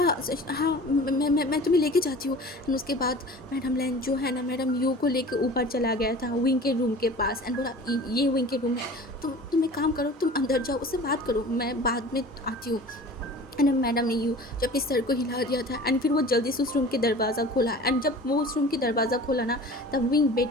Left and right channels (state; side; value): normal; both; correlation 0.41